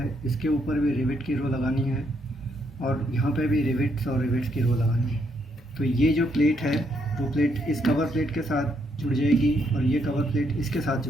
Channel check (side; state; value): both; normal; correlation 0.75